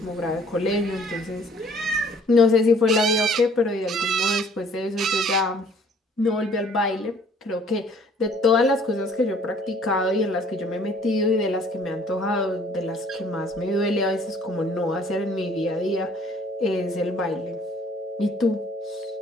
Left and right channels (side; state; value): both; normal; correlation 0.57